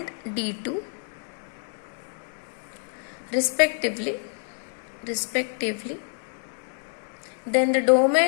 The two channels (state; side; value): silent; right; 60 dB below the other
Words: d2 respectively, then the